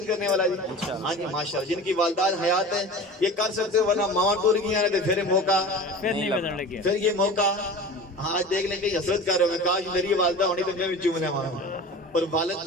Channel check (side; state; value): both; normal; correlation 0.35